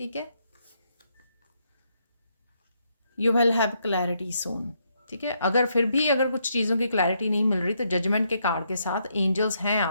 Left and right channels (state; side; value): inverted; both; correlation -0.76